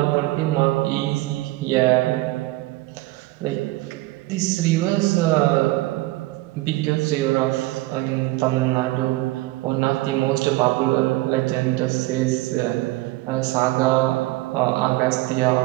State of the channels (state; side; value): quieter; left; 19.1 dB